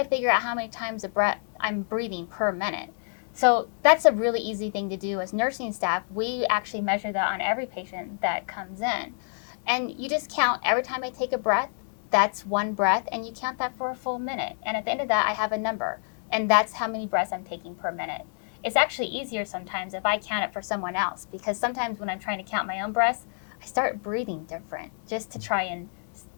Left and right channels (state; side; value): silent; right; 60 dB below the other